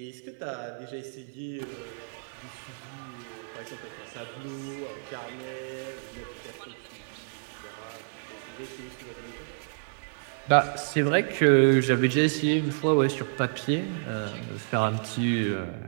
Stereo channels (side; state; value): left; silent; digital silence